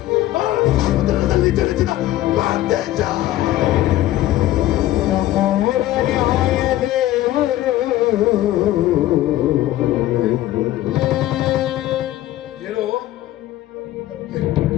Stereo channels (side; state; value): right; quieter; 14.7 dB